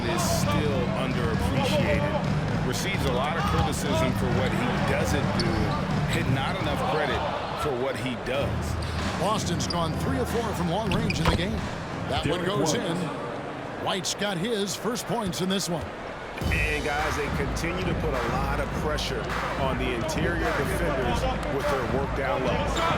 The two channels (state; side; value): identical; both; correlation 1.00